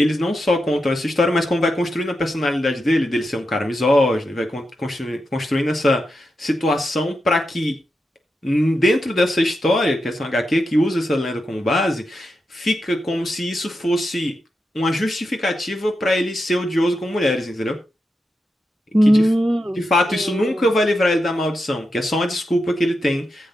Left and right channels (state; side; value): normal; both; correlation 0.87